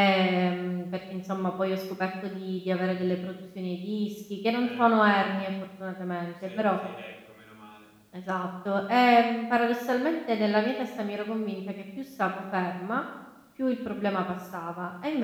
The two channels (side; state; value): both; identical; correlation 1.00